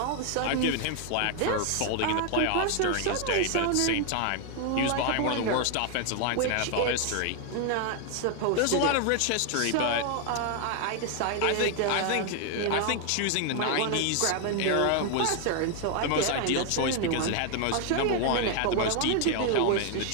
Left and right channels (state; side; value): different; both; correlation 0.00